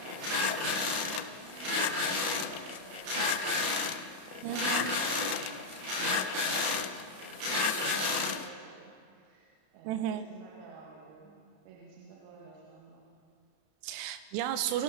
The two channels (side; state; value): left; late; 32 ms